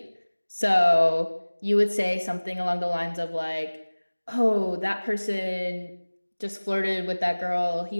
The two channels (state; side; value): inverted; both; correlation -1.00